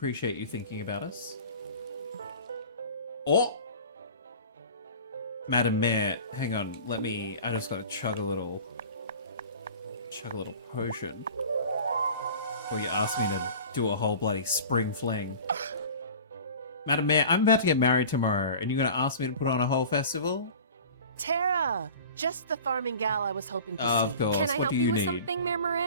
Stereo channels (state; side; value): inverted; both; correlation -0.40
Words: you thinking about us. Oh! Madam Mayor, hang on, I just gotta chug a little potion before you ask me to do a whole bloody spring fling. Madam Mayor, I'm about to get married tomorrow, and you're gonna ask me to put on a whole festival? Tara, just the farming gal I was hoping to see. Of course. Can I What help do you you with need? something, Mayor